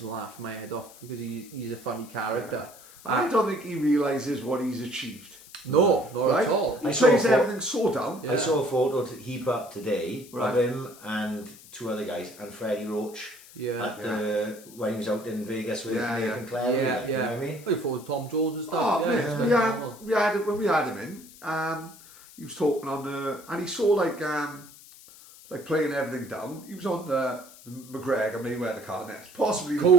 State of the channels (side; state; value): left; noise; hiss, 20 dB below the sound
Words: laughing my head off, because he's a funny character. I don't think he realises what he's achieved. No, not at all. He plays everything so down. I saw a photo to heap up today of him and two other guys and Freddie Roach when he was out in Vegas with Nathan Clare. You know what I mean? I thought Tom Jones and stuff. When we had him in, he was talking on and he saw like playing everything down. He was on the McGregor Mayweather card, and it's possibly the